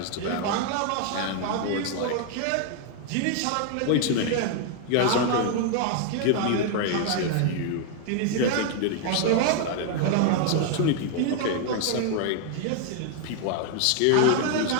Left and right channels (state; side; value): different; both; correlation 0.00